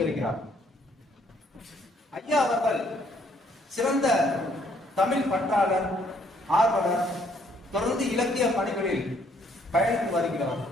ஐயா அவர்கள் சிறந்த தமிழ் பற்றாளர், ஆர்வலர், தொடர்ந்து இலக்கிய பணிகளில் பயணித்து வருகிறவர்.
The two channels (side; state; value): both; normal; correlation 0.66